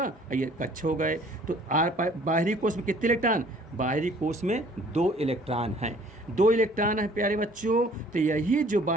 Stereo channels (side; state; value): both; normal; correlation 0.55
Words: और ये कक्ष हो गए। तो बाहरी कोश में कितने इलेक्ट्रॉन, बाहरी कोश में 2 इलेक्ट्रॉन हैं, 2 इलेक्ट्रॉन है प्यारे बच्चों। तो यही जो